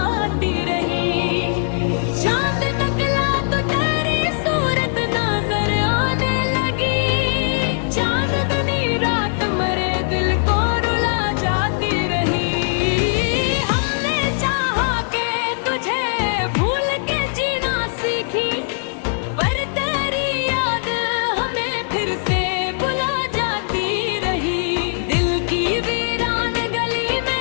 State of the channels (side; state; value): right; silent; 66 dB below the other